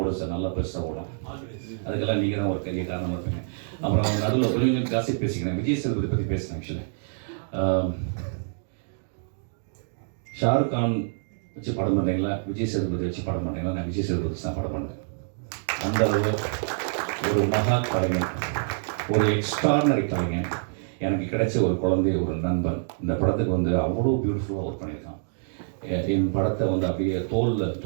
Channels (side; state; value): left; silent; digital silence